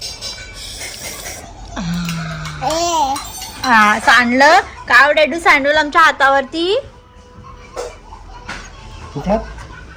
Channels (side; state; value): both; identical; correlation 1.00